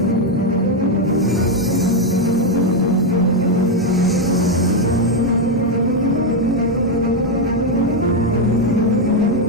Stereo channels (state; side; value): normal; both; correlation 0.03